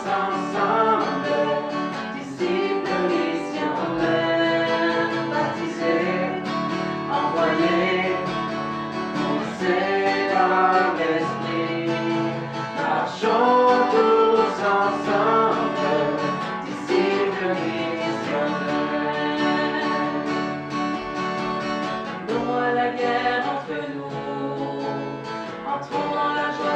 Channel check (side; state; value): both; identical; correlation 1.00